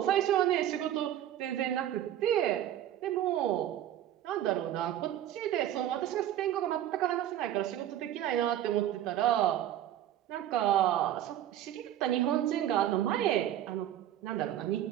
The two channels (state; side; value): quieter; left; 11.9 dB